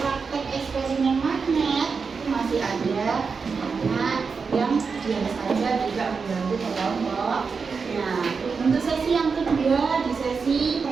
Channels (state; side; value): quieter; left; 5.2 dB